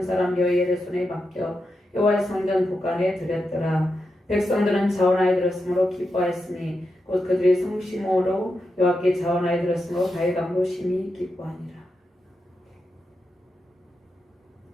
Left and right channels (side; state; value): both; normal; correlation 0.87